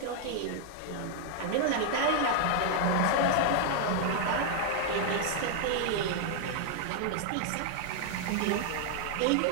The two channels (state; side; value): different; both; correlation 0.00